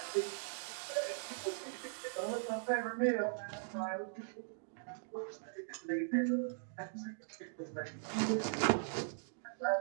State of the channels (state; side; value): silent; left; digital silence